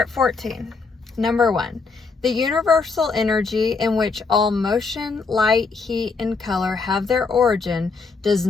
14. Number 1. The universal energy in which all motion, light, heat, and color have their origin does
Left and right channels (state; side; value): quieter; right; 4.4 dB